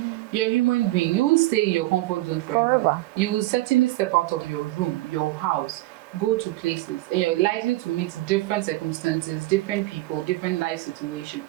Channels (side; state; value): left; quieter; 18.4 dB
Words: You're a human being. You won't stay in your comfort zone forever. You will certainly step out of your room, your house, go to places, and you're likely to meet different circumstances, different people, different life